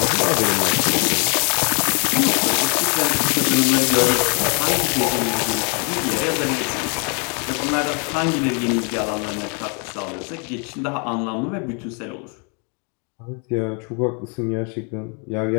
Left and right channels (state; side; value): quieter; right; 36.9 dB